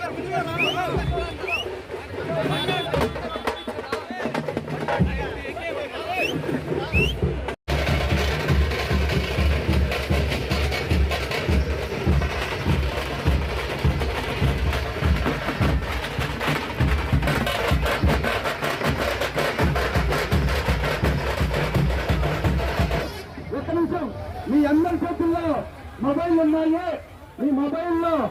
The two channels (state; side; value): identical; both; correlation 1.00